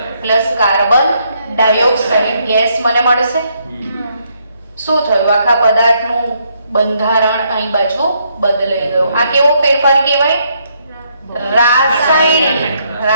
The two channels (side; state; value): both; inverted; correlation -0.74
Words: plus carbon dioxide gas મને મળશે. શું થયું? આખા પદાર્થનું બંધારણ અહીં બાજુ બદલાઈ ગયું. આ કેવો ફેરફાર કહેવાય?